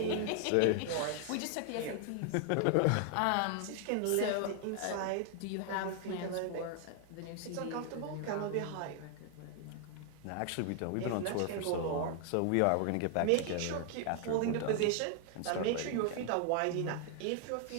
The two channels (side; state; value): both; different; correlation 0.00